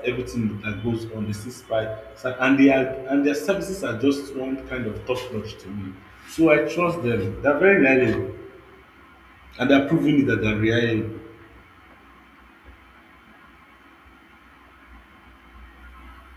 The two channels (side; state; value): both; identical; correlation 1.00